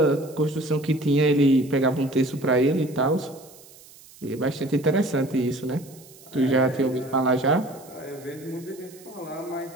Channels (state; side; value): noise; right; hiss, 23 dB below the sound